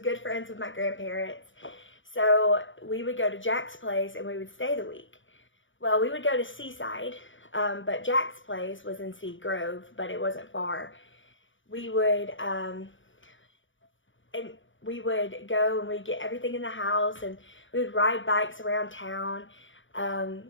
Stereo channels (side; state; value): right; late; 0.56 ms